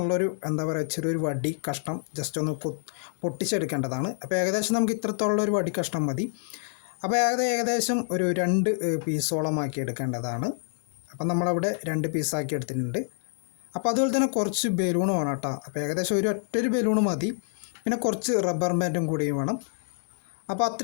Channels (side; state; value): right; silent; 60 dB below the other